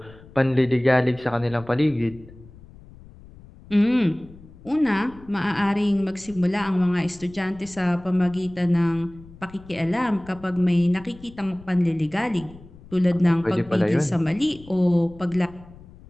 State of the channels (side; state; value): left; noise; rumble, 21 dB below the sound